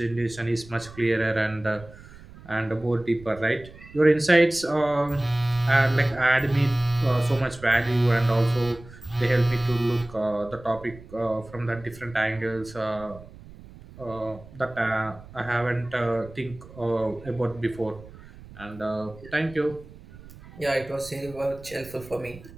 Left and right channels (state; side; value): noise; right; rumble, 19 dB below the sound